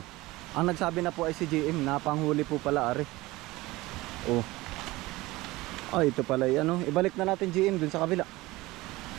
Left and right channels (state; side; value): quieter; left; 19.9 dB